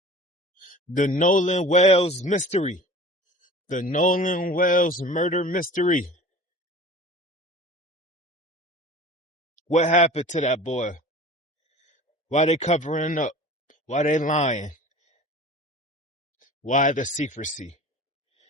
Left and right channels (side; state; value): both; normal; correlation 0.41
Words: The Nolan Wells mystery. The Nolan Wells murder mystery. What happened to that boy? Why they covering up? Why they lying? Why the secrecy?